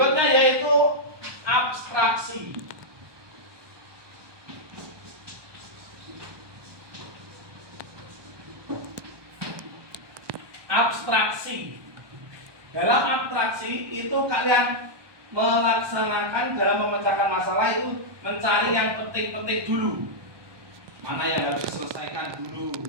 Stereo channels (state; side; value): late; left; 1.2 ms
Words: yaitu abstraksi. Abstraksi. Dalam abstraksi itu kalian melaksanakan dalam memecahkan masalah itu mencari yang penting-penting dulu. Mana yang harus diselesaikan dulu.